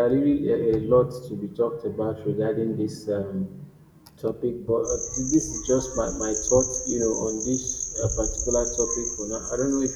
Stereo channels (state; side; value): identical; both; correlation 1.00